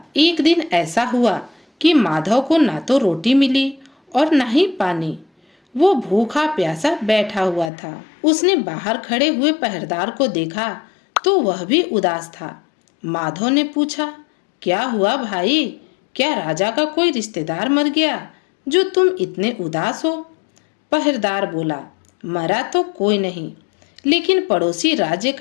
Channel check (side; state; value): right; drops out; at 7.7 s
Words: एक दिन ऐसा हुआ कि माधव को ना तो रोटी मिली और ना ही पानी। वो भूखा प्यासा बैठा हुआ था। उसने बाहर खड़े हुए पहरेदार को देखा तो वह भी उदास था। माधव ने पूछा, क्या हुआ भाई? क्या राजा का कोई रिश्तेदार मर गया जो तुम इतने उदास हो? पहरेदार बोला, मरा तो कोई नहीं, लेकिन पड़ोसी राज्य